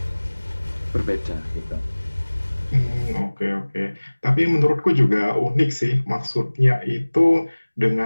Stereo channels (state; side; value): inverted; both; correlation -1.00